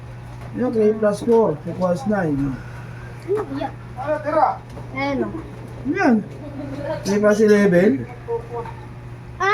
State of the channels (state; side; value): identical; both; correlation 1.00